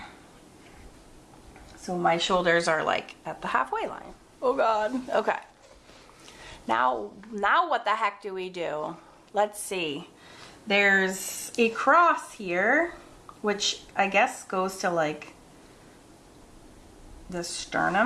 So my shoulders are like at the halfway line. Oh God. Okay. Now what the heck do we do? Let's see. There's a cross here, which I guess goes to like the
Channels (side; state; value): both; identical; correlation 1.00